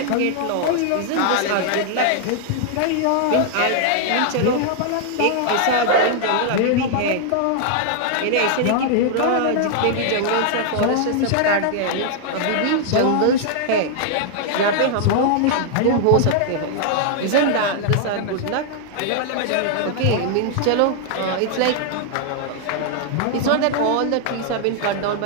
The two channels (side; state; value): both; different; correlation 0.00